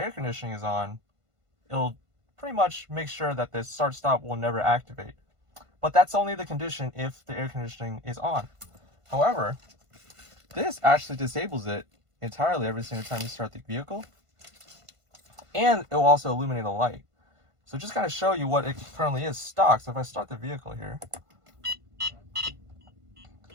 conditioning is on, it'll pretty much make sure that the start stop will never activate. But that's only the condition if the air conditioning is on. However, this actually disables it entirely every single time you start the vehicle. And it will also illuminate a light. So just kind of show you what it currently is stock. So if I start the vehicle here,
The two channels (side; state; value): left; late; 1.5 ms